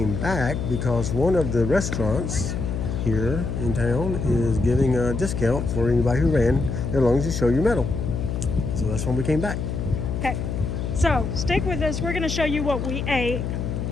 back because one of the restaurants here in town is giving a discount for anybody who ran as long as you show your medal. So that's when we came back. Okay. So, stick with us. We're going to show you what we ate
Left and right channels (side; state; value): left; noise; hum, 3 dB below the sound